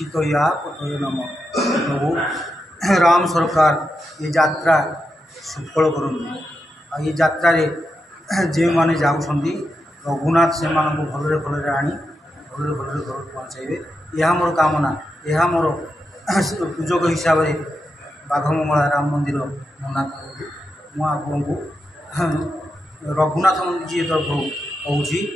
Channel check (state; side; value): normal; both; correlation 0.86